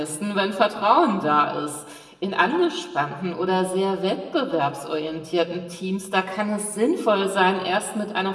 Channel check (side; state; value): both; identical; correlation 1.00